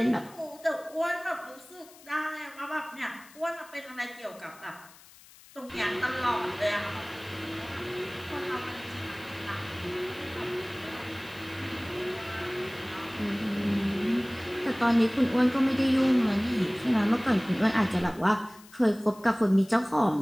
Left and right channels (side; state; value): left; noise; hiss, 23 dB below the sound